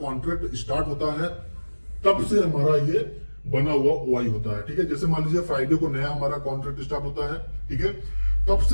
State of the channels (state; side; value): inverted; both; correlation -1.00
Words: स्टार्ट होता है तब से हमारा ये बना हुआ वाई होता है, ठीक है। जैसे मान लीजिए फ्राइडे को नया हमारा कॉन्ट्रैक्ट स्टार्ट होता है, ठीक है, तब